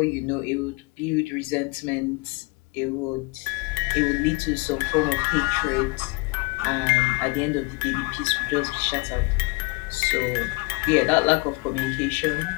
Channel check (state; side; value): quieter; right; 27.0 dB